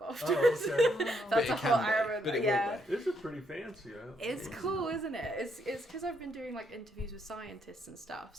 afterwards. Oh, okay. That's a whole Arabic. But it yeah. This is pretty fancy. It's cool, isn't it? It's because I've been doing like interviews with scientists and stuff,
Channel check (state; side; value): normal; both; correlation 0.74